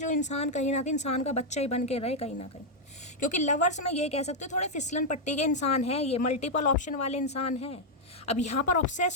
इंसान कहीं ना कहीं इंसान का बच्चा ही बन के रहे कहीं ना कहीं। क्योंकि लवर्स में ये कह सकते हो थोड़े फिसलन पट्टी के इंसान हैं, ये मल्टीपल ऑप्शन वाले इंसान हैं। अब यहाँ पर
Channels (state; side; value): normal; both; correlation -0.02